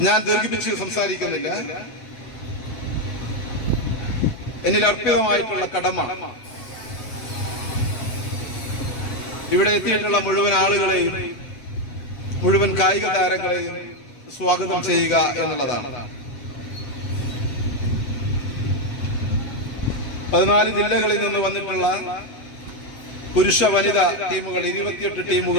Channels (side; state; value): right; late; 8.2 ms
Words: ഞാൻ ദീർഘിപ്പിച്ച് സംസാരിക്കുന്നില്ല. എന്നിൽ അർപ്പിതമായിട്ടുള്ള കടമ ഇവിടെ എത്തിയിട്ടുള്ള മുഴുവൻ ആളുകളെയും മുഴുവൻ കായിക താരങ്ങളെയും സ്വാഗതം ചെയ്യുക എന്നുള്ളതാണ്. 14 ജില്ലകളിൽ നിന്ന് വന്നിട്ടുള്ള പുരുഷ വനിതാ ടീമുകൾ 28